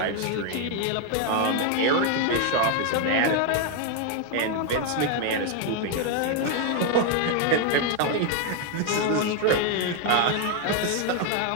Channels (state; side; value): different; both; correlation 0.01